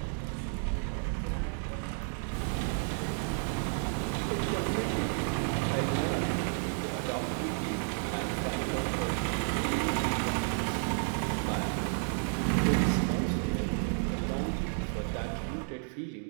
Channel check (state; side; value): silent; left; 57 dB below the other